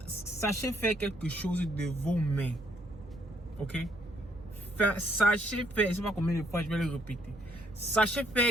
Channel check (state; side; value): normal; both; correlation 0.68